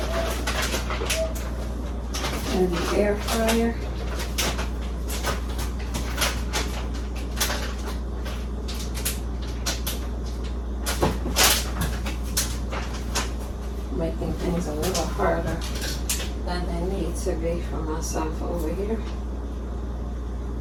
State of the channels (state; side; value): identical; both; correlation 1.00